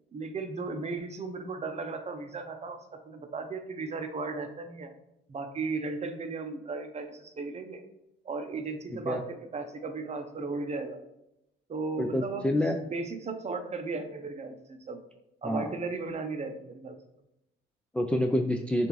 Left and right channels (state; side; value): normal; both; correlation 0.63